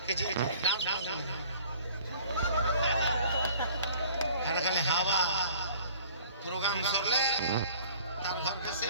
कि जी डांस हर खाली हवा प्रोग्राम सरले तार घर के से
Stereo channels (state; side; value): inverted; both; correlation -0.50